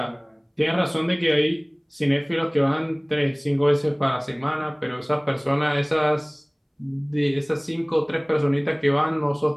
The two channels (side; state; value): both; identical; correlation 1.00